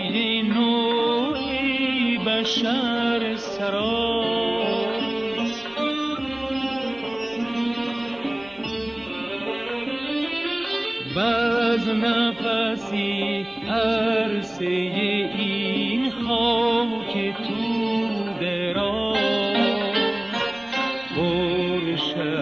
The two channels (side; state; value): left; noise; rumble, 29 dB below the sound